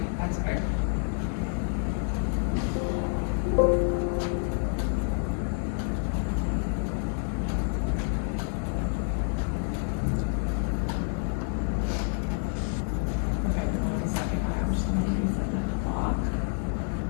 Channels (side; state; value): right; silent; 55 dB below the other